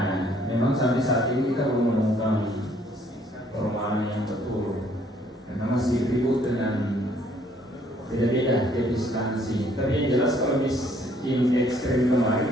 memang sampai saat ini kita belum menemukan perumahan yang betul, karena masih ribut dengan beda-beda jenis instansi. Tapi yang jelas kalau miskin ekstrim kemarin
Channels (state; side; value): normal; both; correlation 0.63